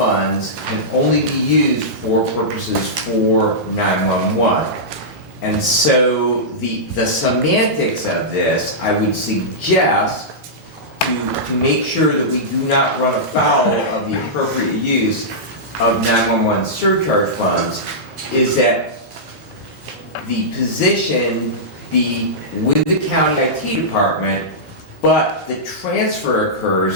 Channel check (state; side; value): normal; both; correlation -0.14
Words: can only be used for purposes for 911. And so the semantics of this, I would suggest to make sure that we do not run afoul of the appropriate use of 911 surcharge funds, is that the position be with the county IT department, but the transfer